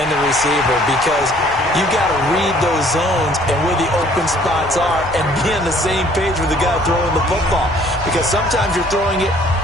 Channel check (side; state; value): left; noise; rumble, 19 dB below the sound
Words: the receiver because you got to read those zones and where the open spots are and be on the same page with the guy throwing the football. Because sometimes you're throwing it